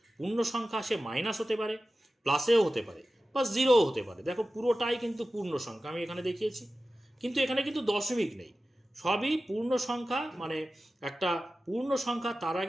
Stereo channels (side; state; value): both; normal; correlation 0.95